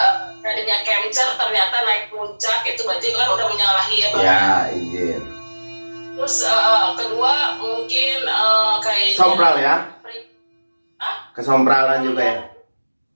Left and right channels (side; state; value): both; inverted; correlation -1.00